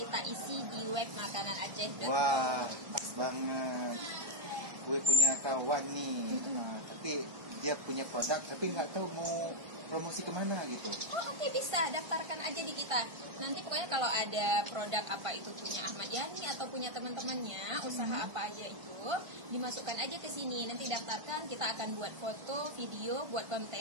isi di web makanan Aceh. Wah, pas banget. Gue punya kawan nih, tapi dia punya produk, tapi nggak tahu mau promosi kemana gitu. Oh oke, bisa daftarkan aja di kita. Nanti pokoknya kalau ada produk apa itu punya Ahmad Yani atau punya teman-temannya, usaha apa aja itu, dimasukkan aja ke sini. Nanti daftarkan, kita akan buat foto, video, buat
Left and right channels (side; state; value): left; late; 1.5 ms